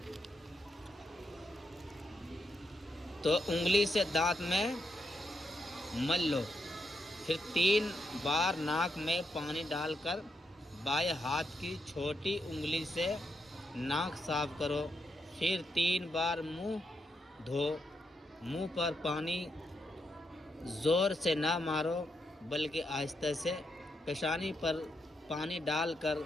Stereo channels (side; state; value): both; normal; correlation 0.82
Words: تو انگلی سے دانت میں مل لو. پھر 3 بار ناک میں پانی ڈال کر بائیں ہاتھ کی چھوٹی انگلی سے ناک صاف کرو. پھر 3 بار منہ دھو. منہ پر پانی زور سے نہ مارو بلکہ آہستہ سے. پیشانی پر پانی ڈال کر